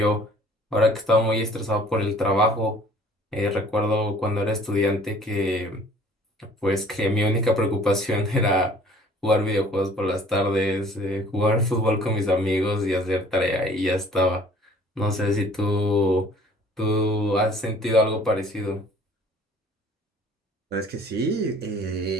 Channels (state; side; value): normal; both; correlation 0.53